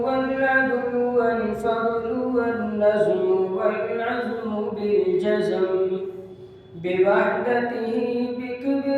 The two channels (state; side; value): identical; both; correlation 1.00